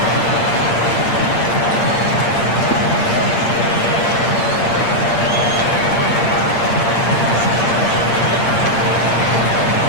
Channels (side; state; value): right; late; 8.7 ms